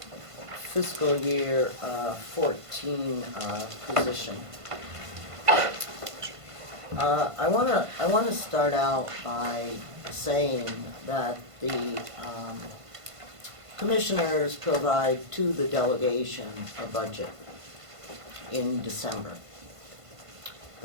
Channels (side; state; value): left; late; 1.5 ms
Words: fiscal year 14 position. I want to start out by saying that the commissioners provide to the delegation a budget in December